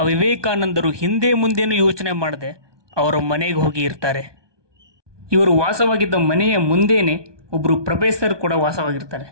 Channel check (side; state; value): left; late; 1.2 ms